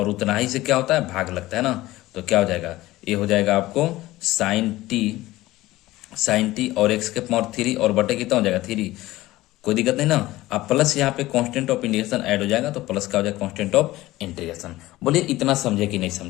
उतना ही से क्या होता है, भाग लगता है ना। तो क्या हो जाएगा, ये हो जाएगा आपको साइन टी और एक्स के पावर 3 और बटे कितना हो जाएगा 3, कोई दिक्कत नहीं ना। अब प्लस यहाँ पे कांस्टेंट ऑफ इंटीग्रेशन ऐड हो जाएगा, तो प्लस का हो जाएगा कांस्टेंट ऑफ इंटीग्रेशन। बोलिए इतना समझे कि नहीं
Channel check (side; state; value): right; quieter; 17.4 dB